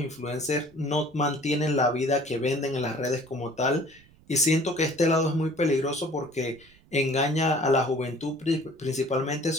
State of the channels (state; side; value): noise; right; rumble, 28 dB below the sound